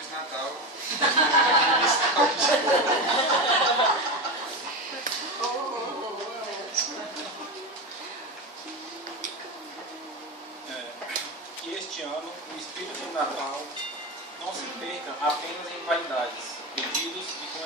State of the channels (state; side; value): normal; both; correlation 0.19